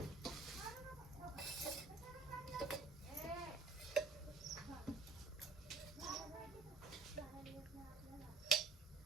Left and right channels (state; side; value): quieter; left; 4.0 dB